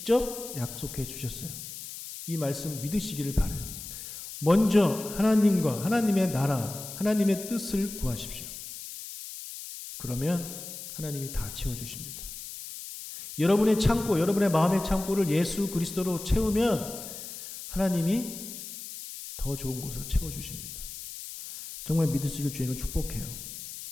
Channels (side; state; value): left; noise; hiss, 11 dB below the sound